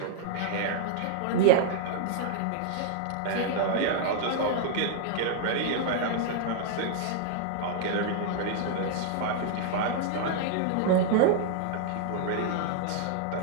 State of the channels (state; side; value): different; both; correlation -0.01